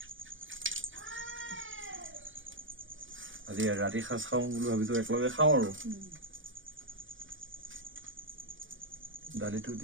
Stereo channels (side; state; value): left; late; 0.57 ms